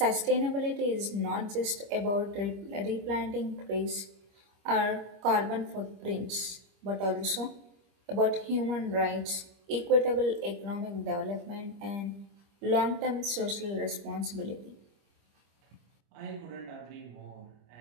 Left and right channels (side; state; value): left; late; 25 ms